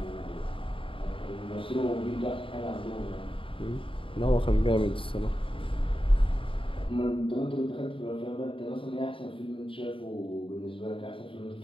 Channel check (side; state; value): right; late; 0.25 ms